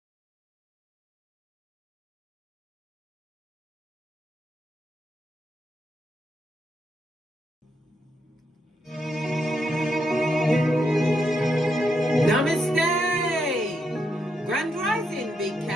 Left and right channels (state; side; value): normal; both; correlation 0.80